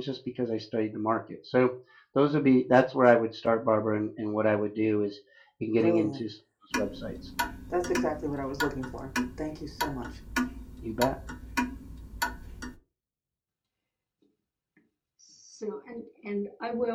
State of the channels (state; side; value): identical; both; correlation 1.00